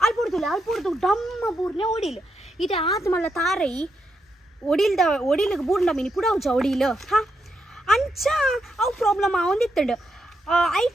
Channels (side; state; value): both; normal; correlation 0.82